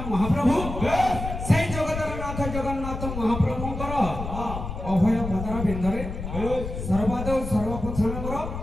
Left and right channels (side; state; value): left; noise; rumble, 7 dB below the sound